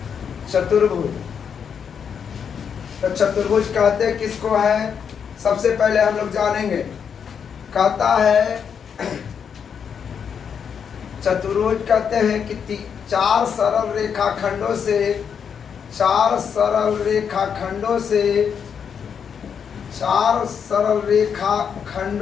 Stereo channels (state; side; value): quieter; right; 7.2 dB